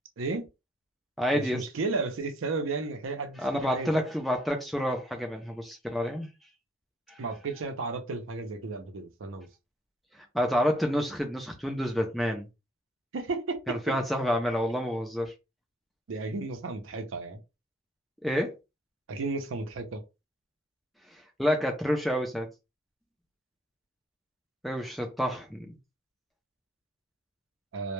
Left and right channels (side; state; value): both; normal; correlation 0.65